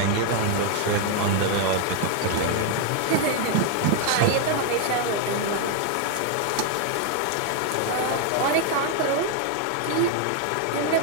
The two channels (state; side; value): different; both; correlation 0.00